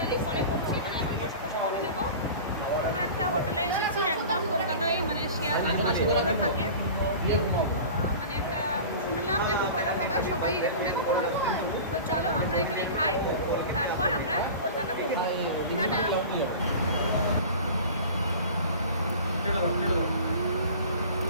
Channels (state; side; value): inverted; both; correlation -0.37